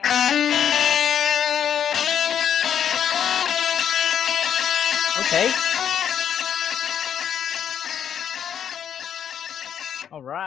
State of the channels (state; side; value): quieter; right; 8.9 dB